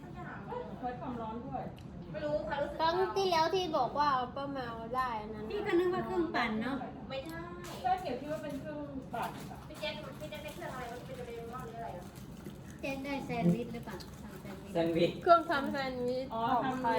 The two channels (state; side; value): identical; both; correlation 1.00